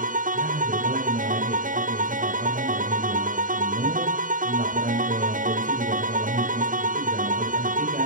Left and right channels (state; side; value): late; left; 0.39 ms